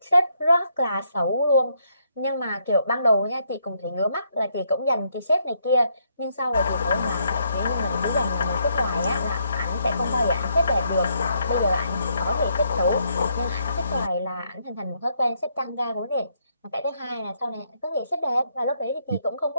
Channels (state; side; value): inverted; both; correlation -0.74